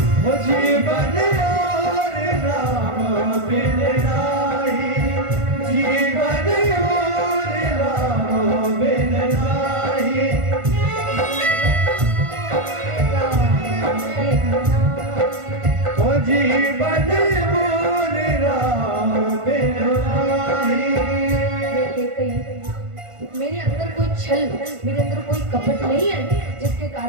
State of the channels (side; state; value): left; late; 1.5 ms